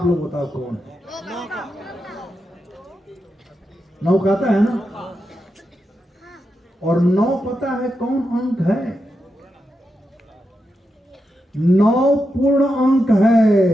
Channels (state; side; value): normal; both; correlation 0.87